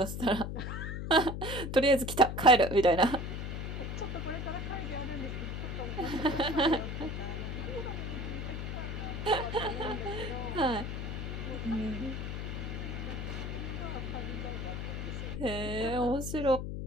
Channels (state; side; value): noise; left; hum, 4 dB below the sound